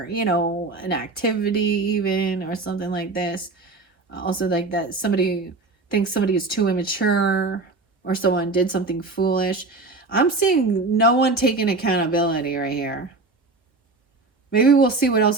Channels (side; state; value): left; quieter; 3.5 dB